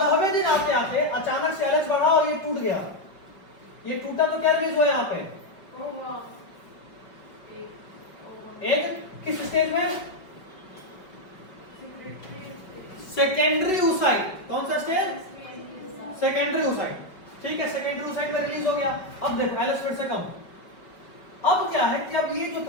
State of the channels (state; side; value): late; right; 5.3 ms